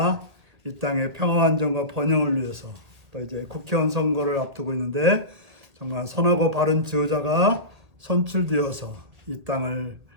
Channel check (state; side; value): late; left; 2.0 ms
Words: 이 땅의 평화 안정과 번영을 위해서 또 이제 국회의원 선거를 앞두고 있는데 정말 선하고 바른 지도자가 선출되어서 이 땅을